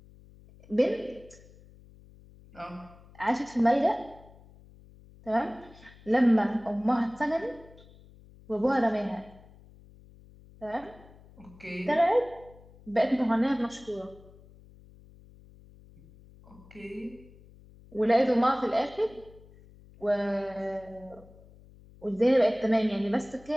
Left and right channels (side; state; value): left; noise; hum, 23 dB below the sound